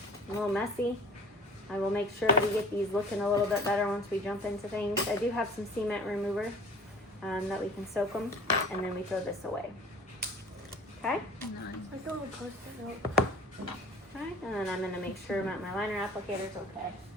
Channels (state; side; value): normal; both; correlation 0.45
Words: a little messy. I will make sure we get these looking a little bit better once we jump into things. I do have some cement remover that we can soak them, and then we throw this away. Okay? Nice. I thought we posted it. Okay, and then I'm gonna make sure that my liner applicator is okay.